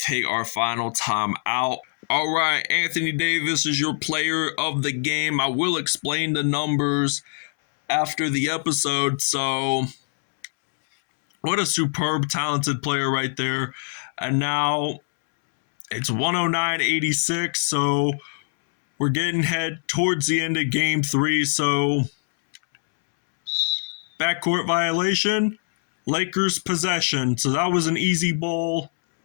our final time out. All right, Anthony Davis is your player of the game. I will explain the numbers after the episode. So, what a superb, talented player right there. And now it's 109.86. So, we're getting head towards the end of game 3. So, backcourt violation, Lakers possession. So, that was an easy ball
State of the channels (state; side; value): silent; right; 63 dB below the other